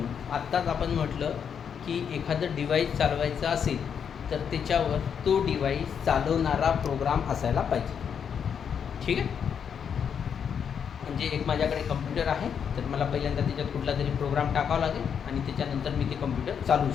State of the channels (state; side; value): quieter; right; 7.5 dB